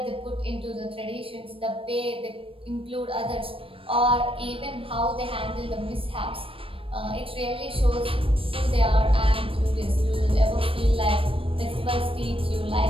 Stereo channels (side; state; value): left; late; 0.26 ms